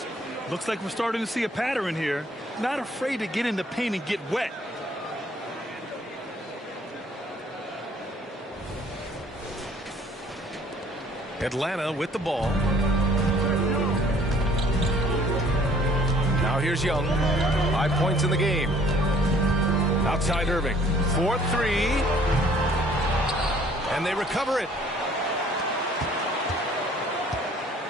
Looks like we're starting to see a pattern here. Not afraid to get in the paint and get wet. Atlanta with the ball. Now here's Young. 5 points in the game. Outside Irving. 4-3. And they recover it.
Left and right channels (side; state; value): both; normal; correlation 0.57